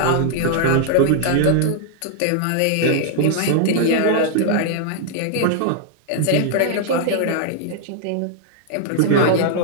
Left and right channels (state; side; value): different; both; correlation -0.01